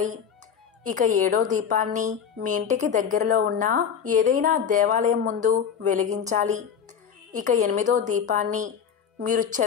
ఇక ఏడో దీపాన్ని మీ ఇంటికి దగ్గరలో ఉన్న ఏదైనా దేవాలయం ముందు వెలిగించాలి. ఇక ఎనిమిదో దీపాన్ని మీరు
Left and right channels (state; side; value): quieter; right; 7.6 dB